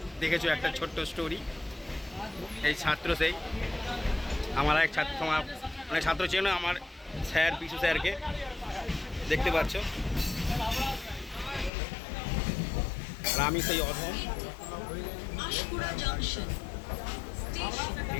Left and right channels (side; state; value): right; drops out; at 11.7 s